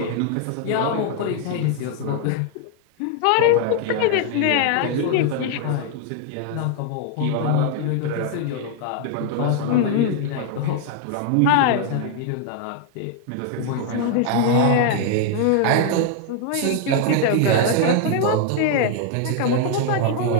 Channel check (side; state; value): both; different; correlation 0.00